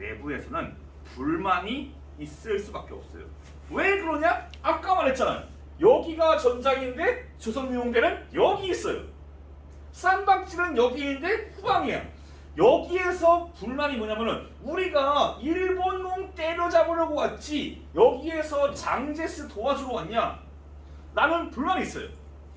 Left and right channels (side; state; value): both; identical; correlation 1.00